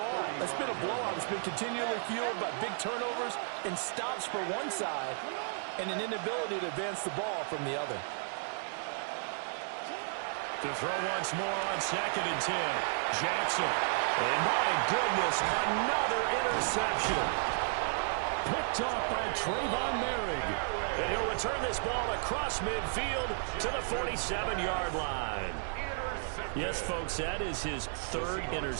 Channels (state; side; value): silent; left; digital silence